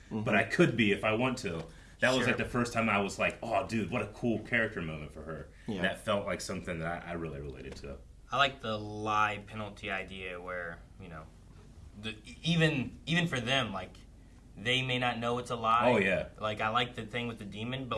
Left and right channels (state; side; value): identical; both; correlation 1.00